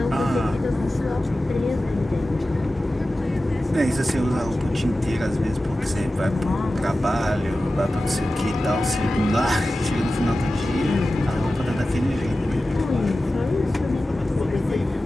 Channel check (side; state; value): both; normal; correlation 0.95